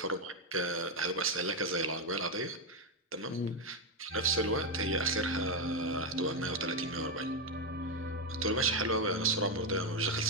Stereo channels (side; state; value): both; normal; correlation 0.05